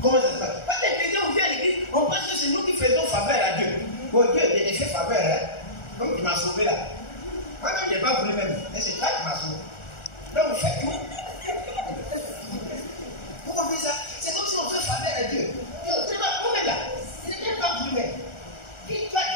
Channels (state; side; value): late; right; 1.4 ms